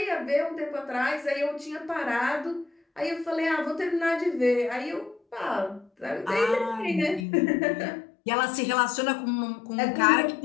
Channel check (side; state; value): right; drops out; at 7.2 s